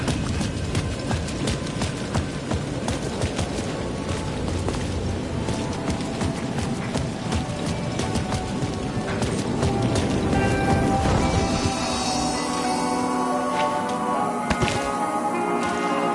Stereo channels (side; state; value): both; identical; correlation 1.00